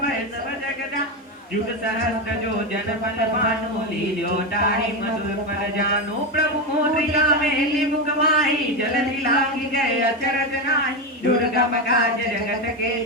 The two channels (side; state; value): both; normal; correlation 0.12